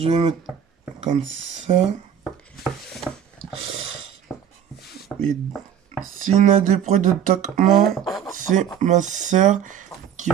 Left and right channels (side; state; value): left; quieter; 8.9 dB